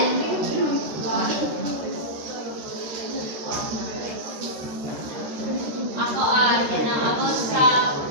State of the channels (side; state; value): left; late; 13 ms